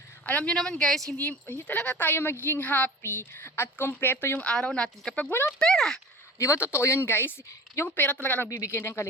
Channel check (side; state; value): both; normal; correlation 0.38